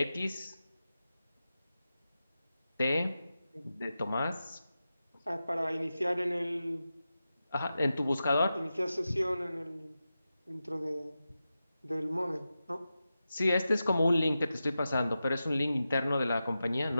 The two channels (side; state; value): both; inverted; correlation -0.92